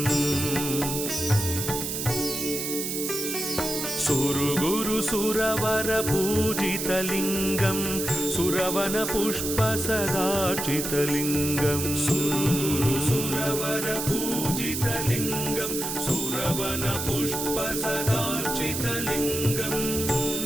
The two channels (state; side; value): noise; right; hiss, 3 dB below the sound